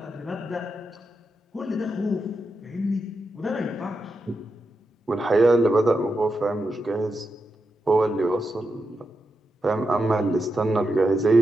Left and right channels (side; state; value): both; normal; correlation 0.87